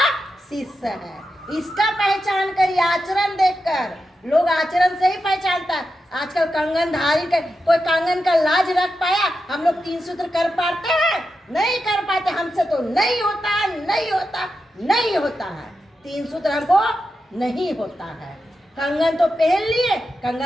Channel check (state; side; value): normal; both; correlation 0.89